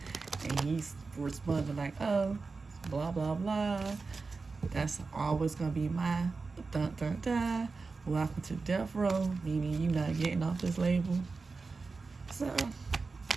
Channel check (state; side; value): quieter; left; 4.2 dB